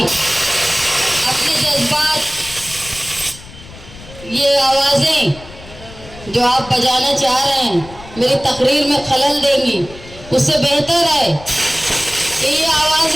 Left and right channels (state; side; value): noise; left; rumble, 18 dB below the sound